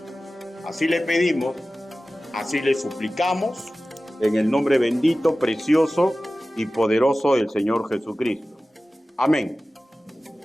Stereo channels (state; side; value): normal; both; correlation 0.96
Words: Así le pedimos, así le suplicamos, en el nombre bendito, precioso y poderoso del Señor Jesucristo. Amén.